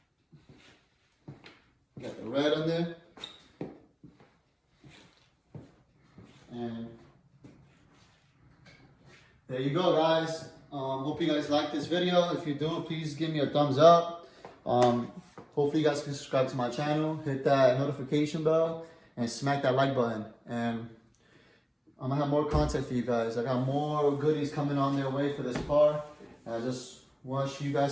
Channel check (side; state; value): both; identical; correlation 1.00